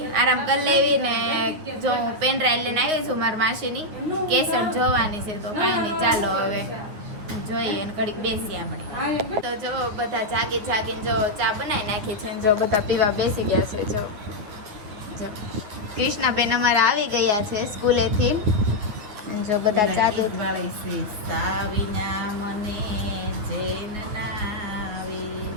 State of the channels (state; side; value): late; left; 9.3 ms